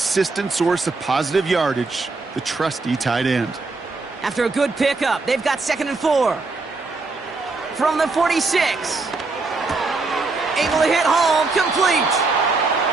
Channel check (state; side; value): quieter; left; 3.7 dB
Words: source of positive yardage, the trusty tight end. After a good pickup, they've got 2nd and 4. From the 46. Able to hit home, complete.